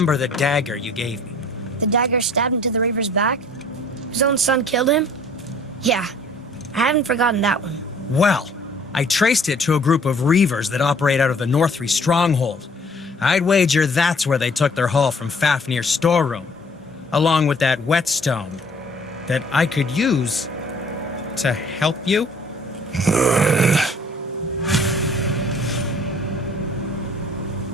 the dagger you gave me? The dagger stabbed into the Reaver's back? His own son killed him? Yeah, I haven't forgotten that one. Well, I traced it to a group of Reavers that operate out of the Northree stronghold. I'd wager that's where they took their haul from Fafnir's storeroom, along with that whetstone that I could use to help you.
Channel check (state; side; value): normal; both; correlation 0.55